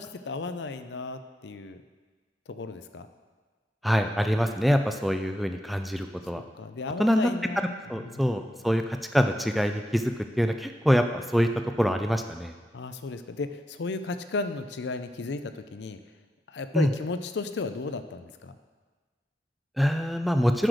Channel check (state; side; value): normal; both; correlation 0.86